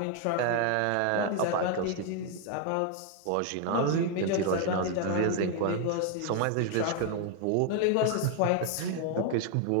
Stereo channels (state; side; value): different; both; correlation 0.00